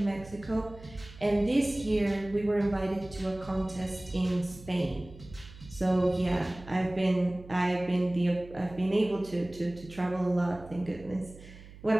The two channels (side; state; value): right; noise; hum, 18 dB below the sound